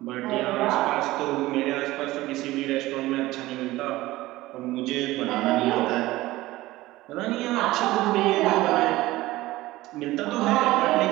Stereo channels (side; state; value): left; quieter; 17.8 dB